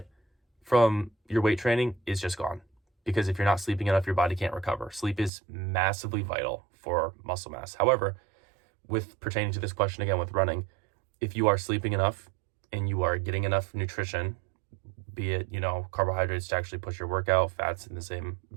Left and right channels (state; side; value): drops out; left; at 5.3 s